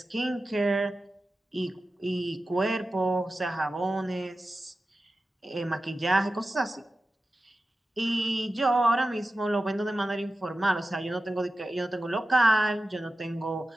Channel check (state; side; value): normal; both; correlation 0.94